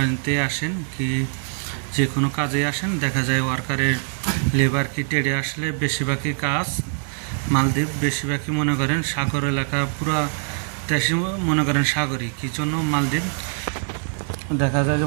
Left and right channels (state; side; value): silent; left; 63 dB below the other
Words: আসেন কি যে কোনো কাজে আসেন, দেখা যায় ওয়ার্কারের লেবার কি টেডে আসলে বেশিরভাগই কাজ মালদ্বীপ বেশিরভাগই মনে করেন সাগর এলাকা, পুরো দেশে মনে করেন সাগরই। কী জন্য মালদ্বীপ দেখা যায়